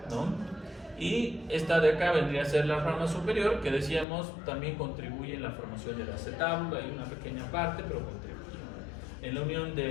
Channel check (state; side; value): drops out; right; at 4.0 s